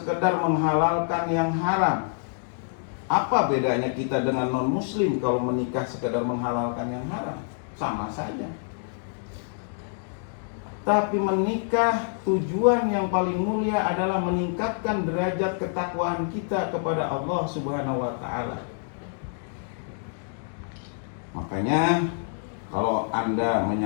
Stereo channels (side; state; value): right; silent; digital silence